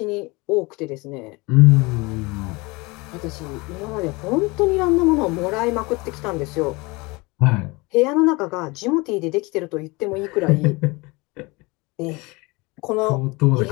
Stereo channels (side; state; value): right; quieter; 25.1 dB